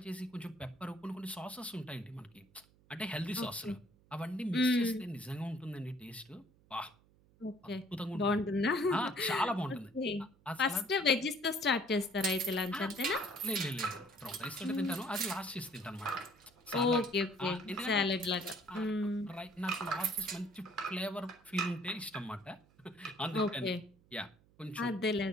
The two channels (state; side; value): noise; right; hum, 30 dB below the sound